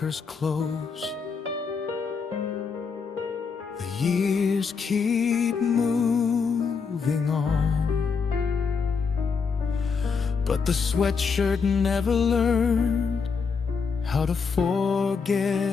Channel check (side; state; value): right; quieter; 5.5 dB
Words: close, the years keep moving on, but the sweatshirt never learned how to